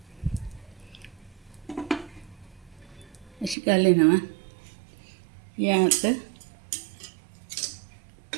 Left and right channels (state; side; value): drops out; left; at 3.6 s